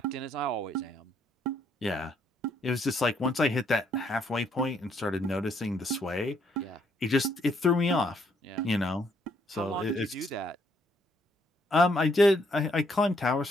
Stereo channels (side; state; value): both; normal; correlation 0.70